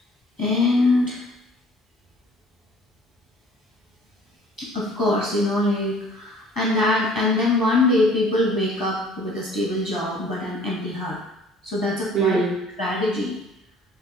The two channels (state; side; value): normal; both; correlation 0.53